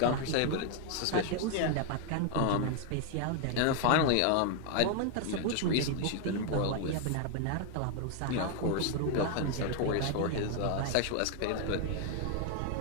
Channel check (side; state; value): both; different; correlation 0.00